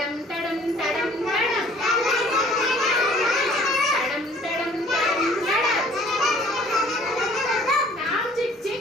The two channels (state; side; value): normal; both; correlation 0.55